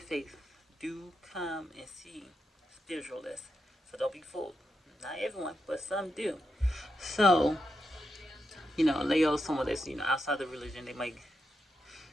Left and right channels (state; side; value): normal; both; correlation 0.86